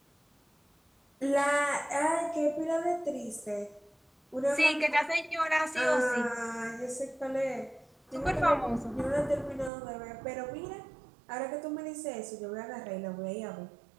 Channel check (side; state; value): left; drops out; at 9.7 s